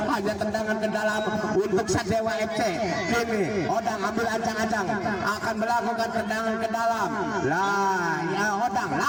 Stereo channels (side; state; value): both; identical; correlation 1.00